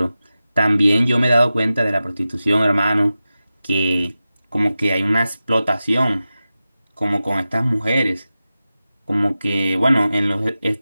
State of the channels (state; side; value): inverted; both; correlation -0.94